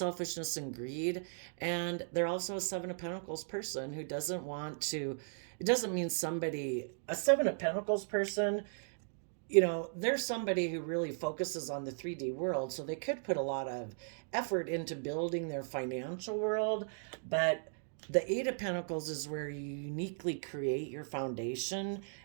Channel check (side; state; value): left; silent; digital silence